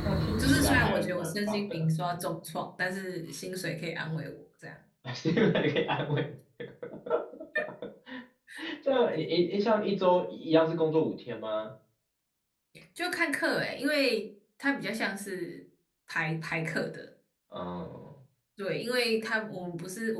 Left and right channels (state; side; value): identical; both; correlation 1.00